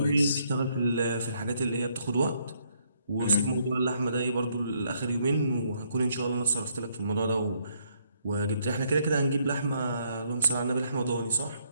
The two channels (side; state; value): both; inverted; correlation -0.71